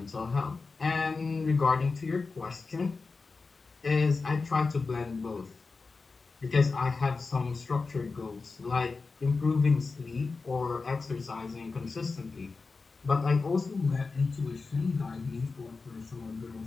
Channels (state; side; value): quieter; right; 4.2 dB